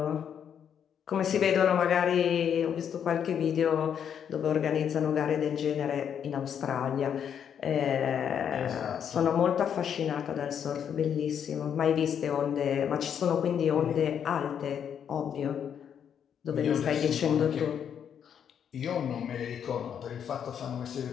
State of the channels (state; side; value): quieter; right; 8.4 dB